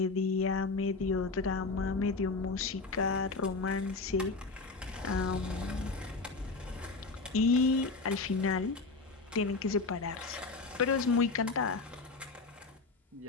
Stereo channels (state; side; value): quieter; right; 3.9 dB